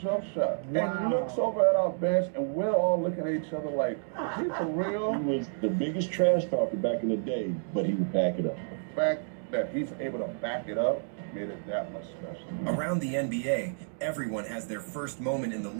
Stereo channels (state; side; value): silent; left; digital silence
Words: shot. Wow. And looks over at our bench, and we're all looking at each other like, is he for real? He was the biggest trash talker back in the day, but he would back it up. The fact that he's able to back it up made it that much special. Around the NBA, everyone has their first moment in the